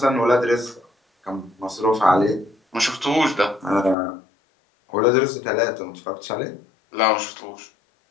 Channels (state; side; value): drops out; right; at 4.0 s